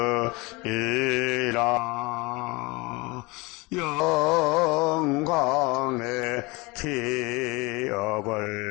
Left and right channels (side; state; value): right; quieter; 25.2 dB